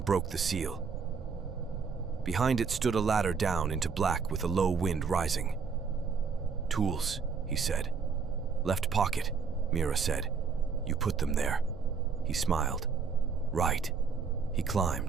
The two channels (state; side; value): quieter; left; 5.5 dB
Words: broke the seal. Behind it stood a ladder down into black with a low wind rising. "Tools," he said. "Left pocket," Mira said. "You put them there." He smiled. "Right." He